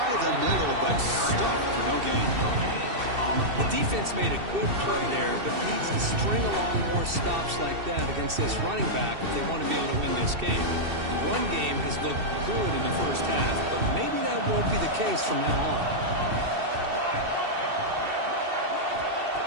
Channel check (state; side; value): late; left; 2.7 ms